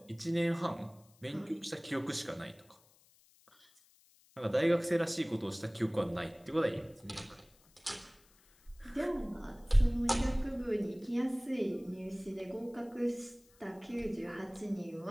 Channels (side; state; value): left; noise; hiss, 29 dB below the sound